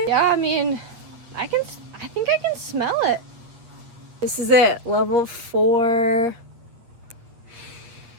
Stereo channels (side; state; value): left; late; 8.4 ms